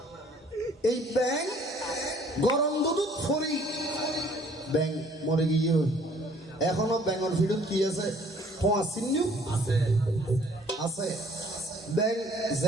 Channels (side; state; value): both; normal; correlation 0.58